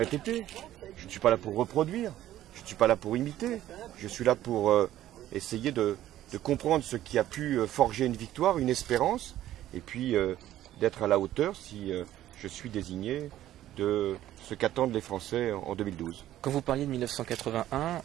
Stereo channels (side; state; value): left; quieter; 13.2 dB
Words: Je ne suis pas là pour reproduire, je ne suis pas là pour imiter. Je suis là pour essayer de comprendre ce qui a pu forger une victoire, une espérance, et puis d'être à la hauteur si je suis désigné de ce qu'attendent les Français en 2012. Quand vous parliez de 1981,